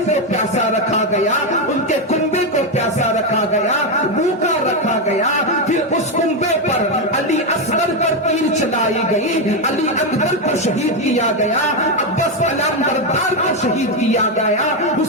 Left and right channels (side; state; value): both; normal; correlation 0.07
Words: کو پیاسا رکھا گیا، ان کے کنبے کو پیاسا رکھا گیا، بھوکا رکھا گیا، پھر اس کنبے پر علی اصغر پر تیر چلائی گئی، علی اکبر کو شہید کیا گیا، عباس علام بردار کو شہید کیا گیا،